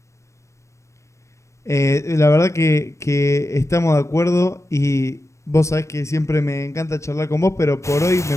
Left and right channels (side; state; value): right; late; 0.14 ms